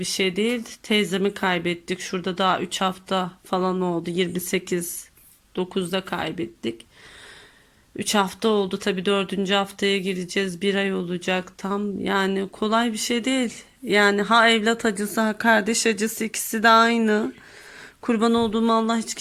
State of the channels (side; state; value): both; identical; correlation 1.00